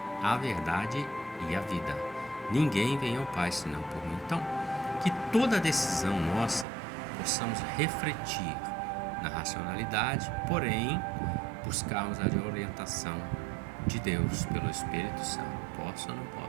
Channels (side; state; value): left; drops out; at 6.7 s